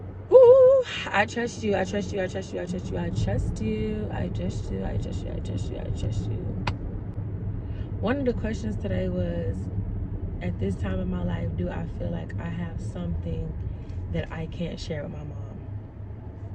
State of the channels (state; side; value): identical; both; correlation 1.00